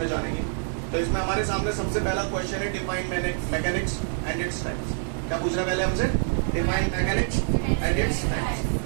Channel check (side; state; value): left; silent; digital silence